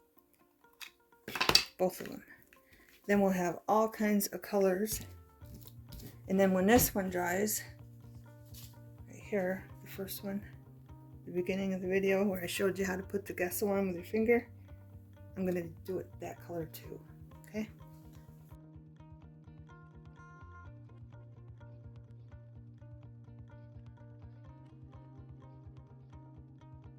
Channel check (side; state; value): both; identical; correlation 1.00